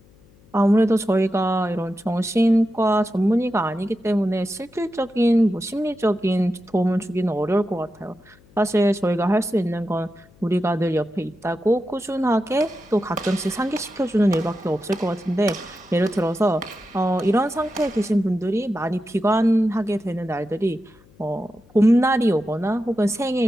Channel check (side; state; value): left; noise; hum, 28 dB below the sound